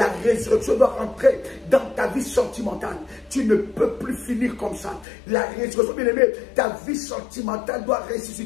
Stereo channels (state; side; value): drops out; right; at 5.1 s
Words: résurrection doit entrer dans ta vie sentimentale. Tu ne peux plus finir comme ça. La résurrection, bien aimé, ta vie sentimentale doit